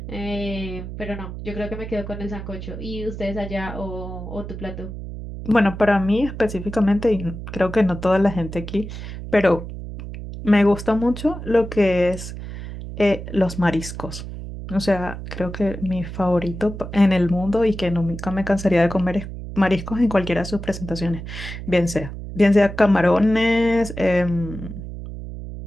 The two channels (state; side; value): noise; right; hum, 9 dB below the sound